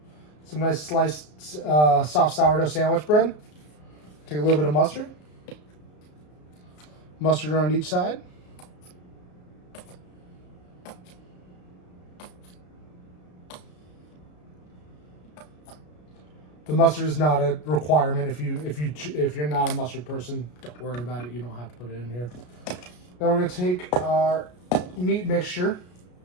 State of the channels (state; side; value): late; right; 33 ms